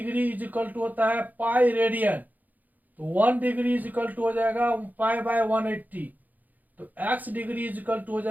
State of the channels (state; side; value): late; left; 0.082 ms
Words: इज इक्वल टू होता है पाई रेडियन, तो 1 डिग्री इज इक्वल टू हो जाएगा पाई बाय 180, तो x degree is equal to हो